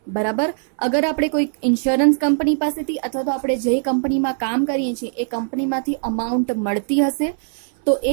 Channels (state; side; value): silent; left; 61 dB below the other